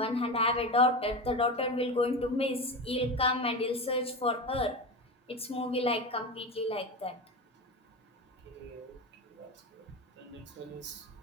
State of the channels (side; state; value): both; normal; correlation 0.23